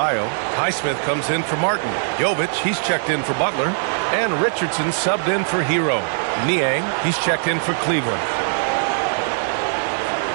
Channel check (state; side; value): silent; left; digital silence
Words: Highsmith comes in for Martin. Jovic, he's checked in for Butler. And Richardson subbed in for Hero. Niang, he's checked in for Cleveland.